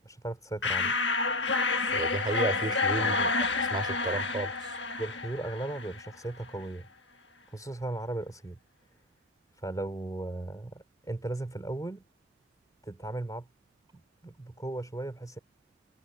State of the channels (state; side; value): normal; both; correlation 0.20